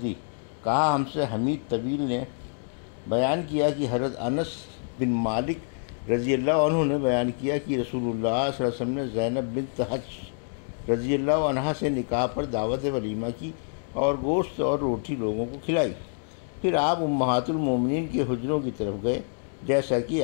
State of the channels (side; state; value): right; silent; digital silence